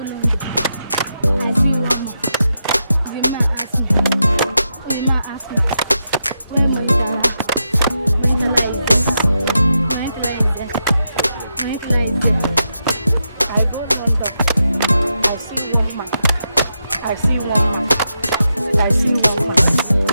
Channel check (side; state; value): both; inverted; correlation -0.85